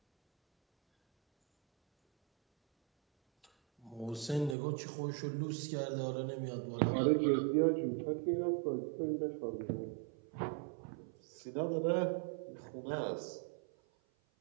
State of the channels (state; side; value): drops out; left; at 4.5 s